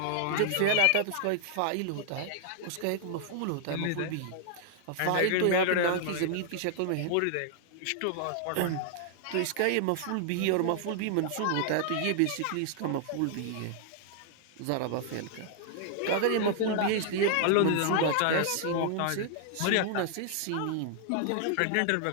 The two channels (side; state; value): both; different; correlation 0.00